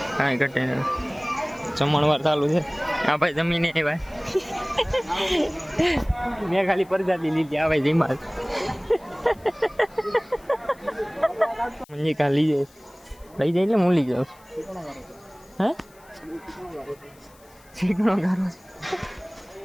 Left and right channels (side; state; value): left; noise; hiss, 28 dB below the sound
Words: કાંઈ ઘટે નહીં. જમણવાર ચાલુ છે. આ ભાઈ જમીને ભાઈ મેં ખાલી પ્રજાતિ લીધી. આ ભાઈ જીમાલ મંજી લઈ જાય એટલે હું લઈ જાઉં. હે ચીકણો ગારો